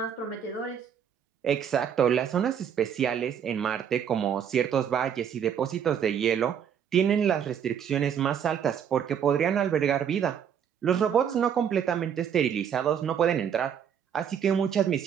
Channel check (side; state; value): left; quieter; 8.3 dB